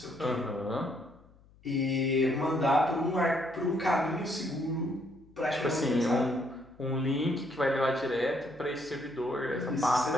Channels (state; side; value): noise; left; hum, 27 dB below the sound